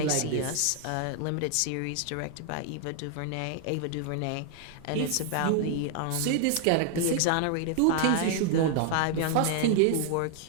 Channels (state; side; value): different; both; correlation 0.00